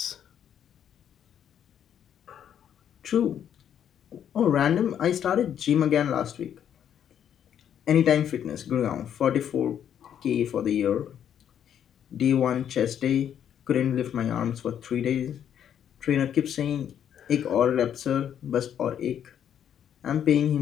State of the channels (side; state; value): right; quieter; 9.3 dB